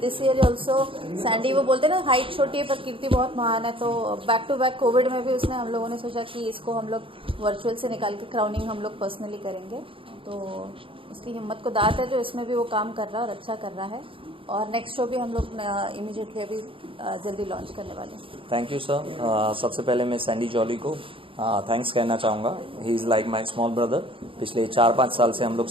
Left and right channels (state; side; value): late; left; 0.26 ms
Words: this year also, Sandy, वो बोलते हैं ना, हाइट छोटी है पर कीर्ति बहुत महान है, तो बैक-टू-बैक कोविड में भी उसने, हम लोगों ने सोचा कि इसको हम लोग वर्चुअल से निकाल के क्राउनिंग हम लोग पर्सनली करेंगे। तो उसकी हिम्मत को दात है जो इसमें भी वो काम कर रहा है और अच्छा कर रहा है। और नेक्स्ट शो भी हम लोग इमीडिएटली अभी जल्दी लॉन्च करने वाले हैं। Thank you sir. सबसे पहले मैं सैंडी जॉली को थैंक्स कहना चाहूँगा। He is like my small brother. पिछले 4-5 साल से हम लोग